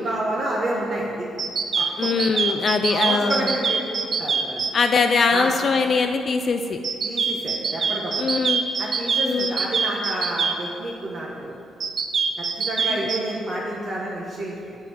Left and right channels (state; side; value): normal; both; correlation 0.76